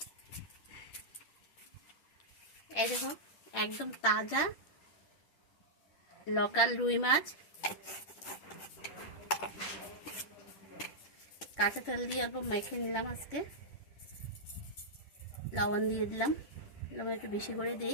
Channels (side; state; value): right; late; 10 ms